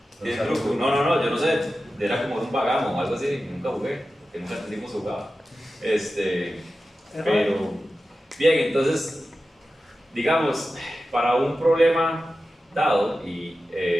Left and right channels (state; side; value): normal; both; correlation 0.93